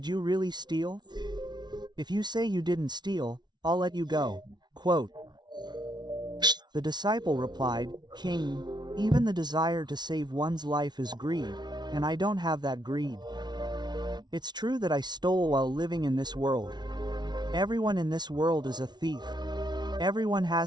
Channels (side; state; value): left; late; 0.20 ms